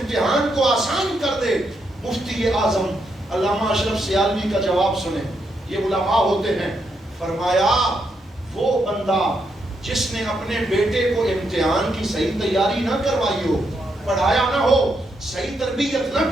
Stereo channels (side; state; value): both; normal; correlation 0.80